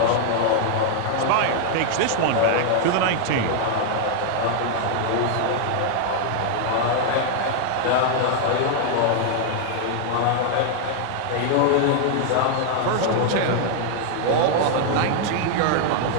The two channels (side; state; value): both; different; correlation 0.00